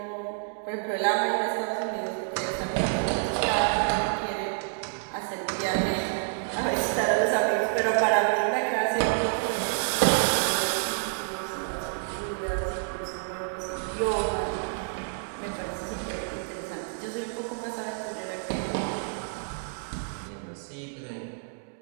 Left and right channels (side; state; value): left; silent; digital silence